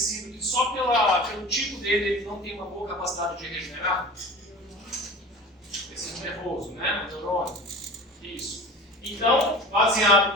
que só pelo tipo dele ele não tem uma boa capacidade de regenerar? Tecido nervoso, né? Neurônio. Isso. Então, baseado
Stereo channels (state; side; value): normal; both; correlation 0.36